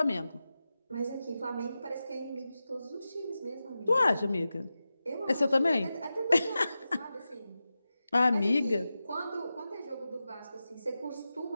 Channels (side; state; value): both; inverted; correlation -0.93